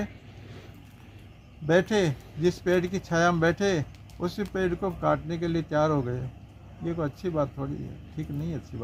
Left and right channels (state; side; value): identical; both; correlation 1.00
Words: बैठे, जिस पेड़ की छाया में बैठे, उसी पेड़ को काटने के लिए तैयार हो गए। ये कोई अच्छी बात थोड़ी है, ठीक नहीं अच्छी